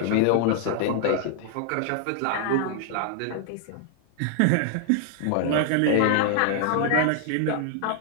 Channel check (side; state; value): both; different; correlation 0.00